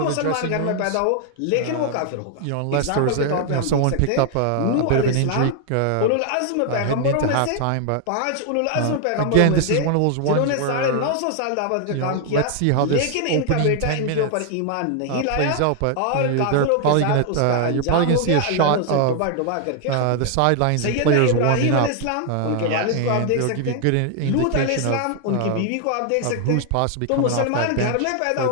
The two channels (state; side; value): different; both; correlation 0.00